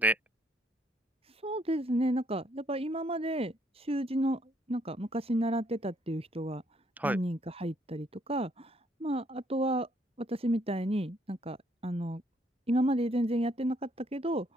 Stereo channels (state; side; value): normal; both; correlation 0.69